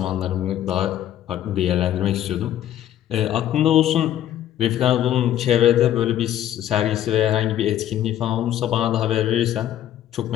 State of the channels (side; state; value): right; quieter; 11.7 dB